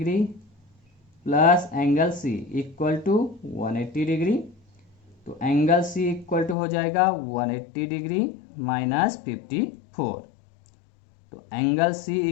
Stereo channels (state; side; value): drops out; right; at 6.6 s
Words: plus angle c equal to 180 degree, तो एंगल c इक्वल टू हो जाएगा 180 डिग्री माइनस 54, तो एंगल c